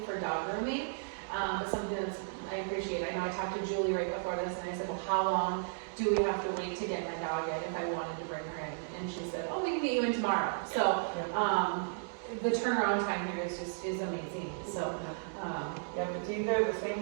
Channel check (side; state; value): left; silent; digital silence